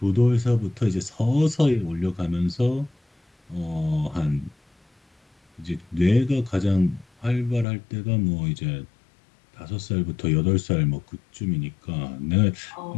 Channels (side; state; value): right; drops out; at 7.7 s